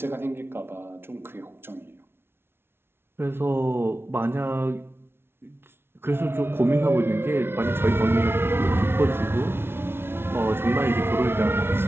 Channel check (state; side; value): late; left; 0.12 ms